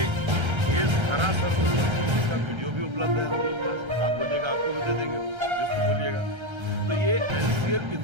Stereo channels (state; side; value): late; left; 1.3 ms